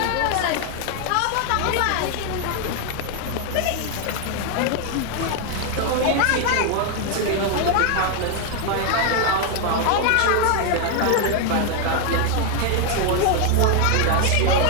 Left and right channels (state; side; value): different; both; correlation 0.00